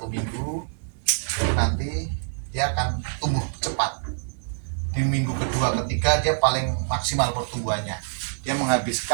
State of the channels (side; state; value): left; silent; digital silence